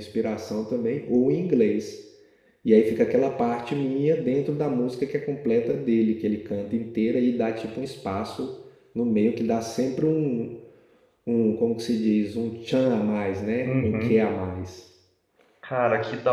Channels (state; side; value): identical; both; correlation 1.00